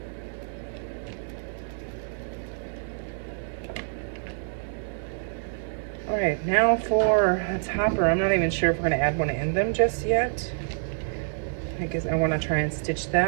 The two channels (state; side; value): silent; left; digital silence